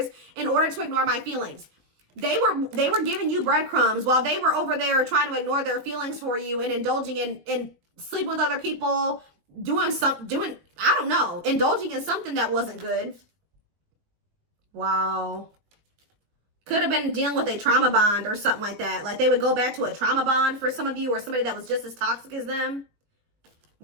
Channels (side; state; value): left; late; 20 ms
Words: in order to ignore my feelings. They were giving you breadcrumbs while they were over there trying to ignore their feelings for you and indulging in sleeping with other people, I don't know, indulging in something that wasn't good. Wow. Could have been dealing with a trauma bond or something like that. Like they would go back to a trauma bond for some of you, or somebody that was just as toxic as them.